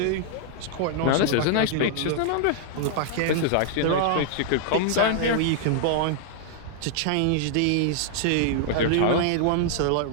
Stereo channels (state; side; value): different; both; correlation -0.01